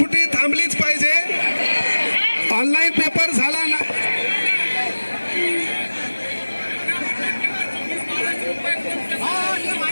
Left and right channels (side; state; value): both; inverted; correlation -1.00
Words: थांबलीच पाहिजे. ऑनलाईन पेपर झाला ना,